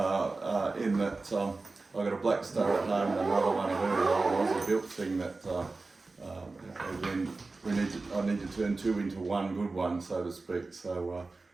In that I've got a Black Star at home and another one, a very old Aussie built thing that again I need to turn 2 into one good one, so to speak. So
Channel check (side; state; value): left; quieter; 3.6 dB